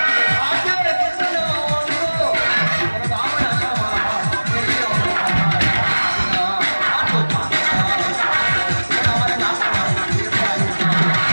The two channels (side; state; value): both; inverted; correlation -1.00